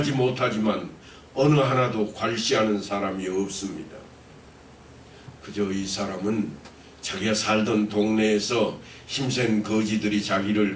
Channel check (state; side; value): identical; both; correlation 1.00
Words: 못하지만 어느 하나도 괄시하는 사람이 없습니다. 그저 이 사람은 자기가 살던 동네에서 힘센 거지들이